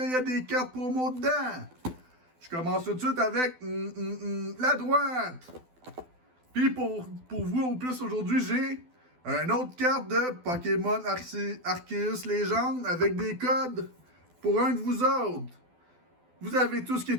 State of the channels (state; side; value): late; left; 12 ms